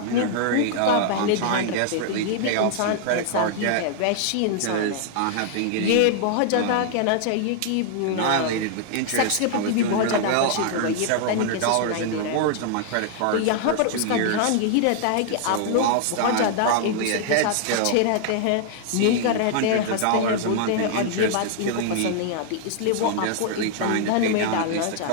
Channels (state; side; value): different; both; correlation -0.01